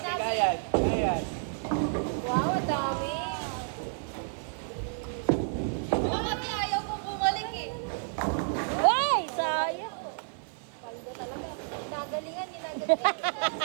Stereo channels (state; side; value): silent; left; 58 dB below the other